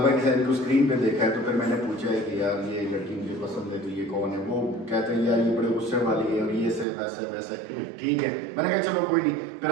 भाई की शायद को स्क्रीन पे देखा है, तो फिर मैंने पूछा है कि यार ये लड़की मुझे पसंद है, तो ये कौन है? वो कहते हैं यार ये बड़े गुस्से वाली है और ये से वैसे वैसे। ठीक है, मैंने कहा चलो कोई नहीं। फिर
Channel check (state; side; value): drops out; left; at 6.9 s